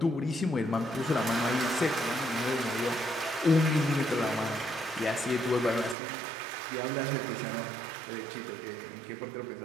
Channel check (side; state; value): left; drops out; at 6.0 s